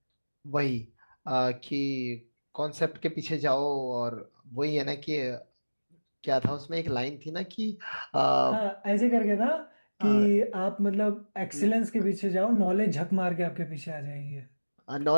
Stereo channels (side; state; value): both; inverted; correlation -1.00